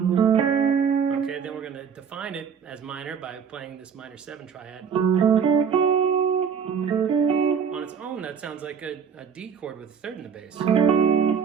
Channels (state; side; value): quieter; left; 6.9 dB